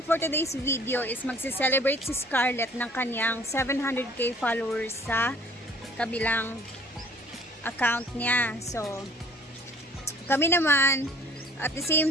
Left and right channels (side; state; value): both; normal; correlation 0.53